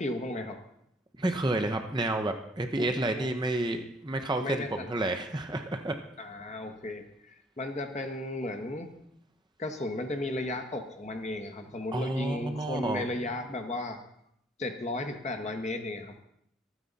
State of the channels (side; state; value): both; normal; correlation 0.61